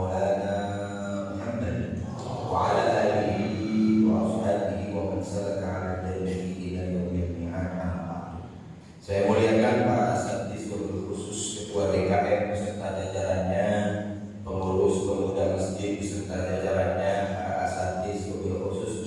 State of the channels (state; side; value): identical; both; correlation 1.00